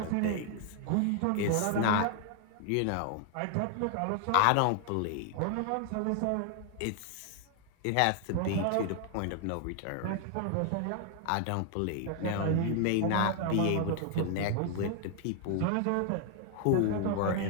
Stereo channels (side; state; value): both; different; correlation 0.00